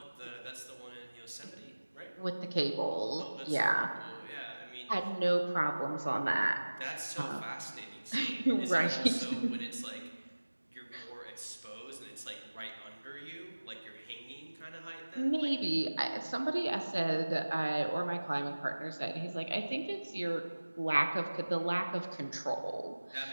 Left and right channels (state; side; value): inverted; both; correlation -1.00